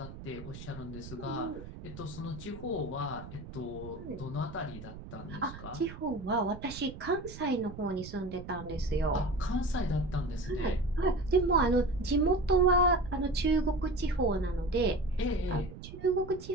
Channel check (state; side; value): noise; right; rumble, 13 dB below the sound